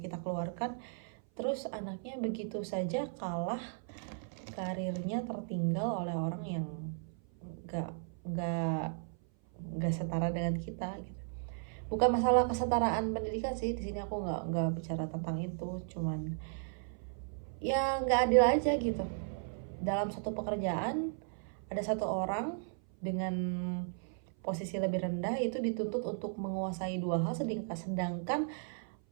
kita keluarkan, terus anaknya begitu saja kalah, karirnya tertinggal oleh orang yang gak setara dengan kita gitu. Bukan masalah kesetaraan pendidikan sih, di sini aku nggak bicara tentang itu, cuman ya nggak adil aja gitu. Dalam satu pekerjaan ada satu orang dengan posisi lebih rendah itu dituntut untuk menguasai dua hal, sedangkan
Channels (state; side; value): silent; left; 54 dB below the other